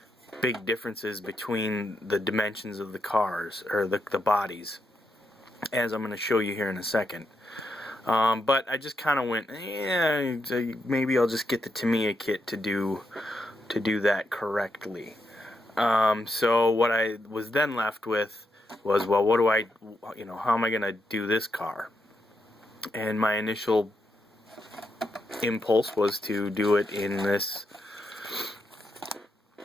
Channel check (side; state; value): both; normal; correlation 0.82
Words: big differences between the dimensions of the cars, or the bodies, as I'm going to show you here in a second. But I just kind of went, yeah, maybe I'll just get the Tamiya kit to do that correctly. So what I was then left with was, well, what do I, how am I going to do this car? And my initial impulse was to do it in this